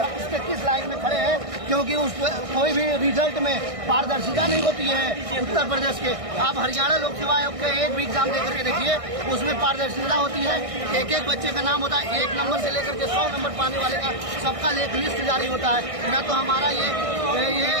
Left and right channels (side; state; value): left; late; 1.6 ms